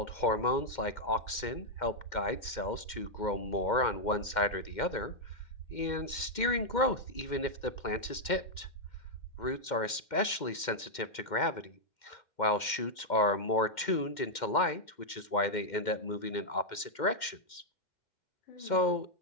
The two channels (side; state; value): right; late; 2.1 ms